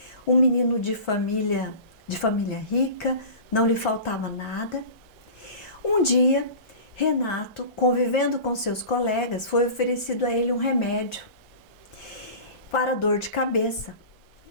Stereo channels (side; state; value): right; late; 1.4 ms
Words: um menino de família rica, não lhe faltava nada. Um dia, Renato, convivendo com seus colegas, foi oferecido a ele um remédio para dor de cabeça.